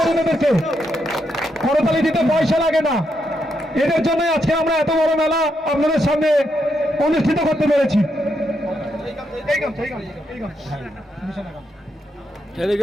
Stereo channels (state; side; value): normal; both; correlation 0.80